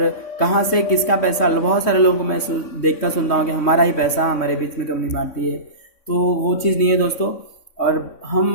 कहाँ से किसका पैसा। बहुत सारे लोगों को मैं देखता सुनता हूँ कि हमारा ही पैसा हमारे बीच में कंपनी बांटती है, तो वो चीज़ नहीं है दोस्तों। और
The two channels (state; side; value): late; right; 3.6 ms